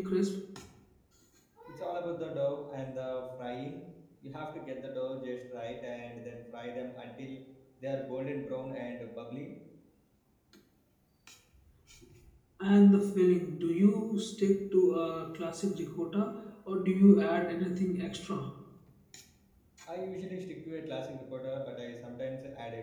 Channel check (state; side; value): identical; both; correlation 1.00